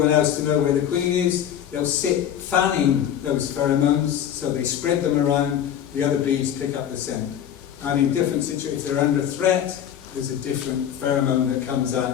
else to know where the queen is, they'll sit fanning those pheromones, so they spread them around. The other bees pick up the scent. And in different situations, if they're under threat, there's a different pheromone that comes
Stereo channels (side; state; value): right; quieter; 9.8 dB